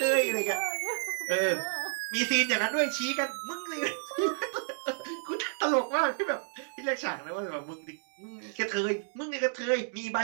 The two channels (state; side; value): silent; left; 57 dB below the other